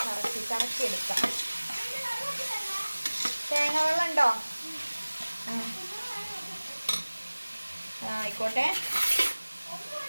കറക്കി എടുക്കാം. തേങ്ങ വെള്ളം ഉണ്ടോ? ആയിക്കോട്ടെ.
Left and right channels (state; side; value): inverted; both; correlation -1.00